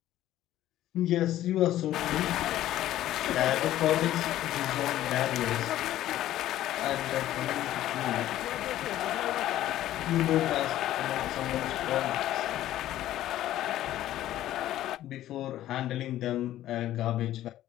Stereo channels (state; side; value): quieter; right; 13.5 dB